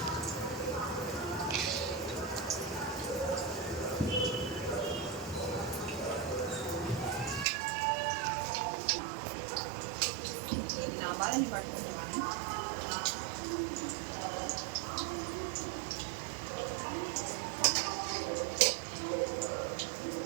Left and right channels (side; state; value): left; drops out; at 7.5 s